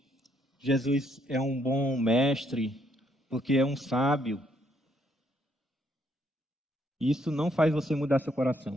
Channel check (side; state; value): both; normal; correlation 0.71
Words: Jesus é um bom mestre, porque é um sábio. Isso não faz você mudar seu